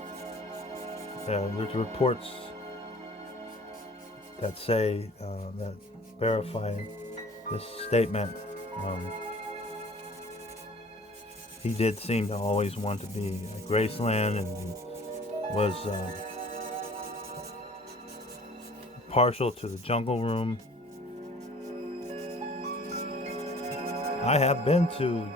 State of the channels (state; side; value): normal; both; correlation 0.49